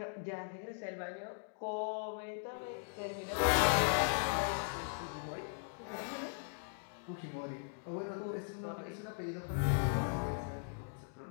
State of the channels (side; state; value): right; silent; digital silence